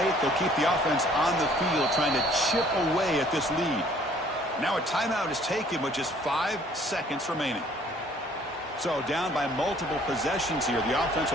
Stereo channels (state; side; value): normal; both; correlation 0.58